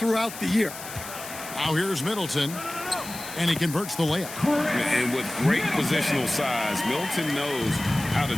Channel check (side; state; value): left; noise; hiss, 12 dB below the sound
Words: the year. Now here's Middleton, and he converts the layup. And with great positional size, Middleton knows how to